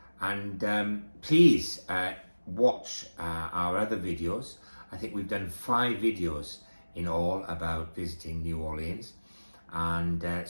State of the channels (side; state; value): both; inverted; correlation -1.00